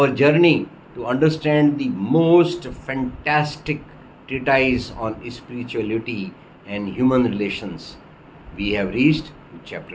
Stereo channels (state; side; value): identical; both; correlation 1.00